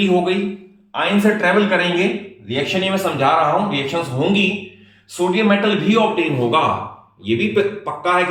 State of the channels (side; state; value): both; identical; correlation 1.00